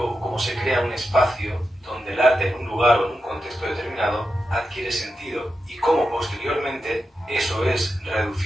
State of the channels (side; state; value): both; normal; correlation 0.89